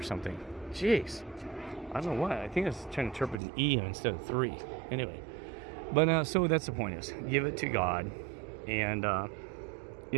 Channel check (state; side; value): drops out; left; at 3.4 s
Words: something. Jeez. I don't know why. I think I was trying to interpret an E instead of 3. Anyway. But so that's the point, is give it to God. And,